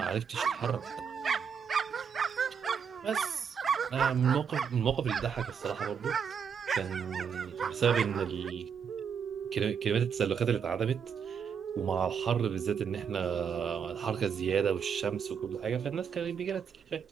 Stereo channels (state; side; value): quieter; left; 7.0 dB